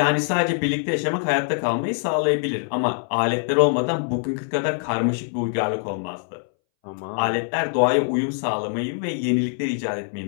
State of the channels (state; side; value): silent; right; 62 dB below the other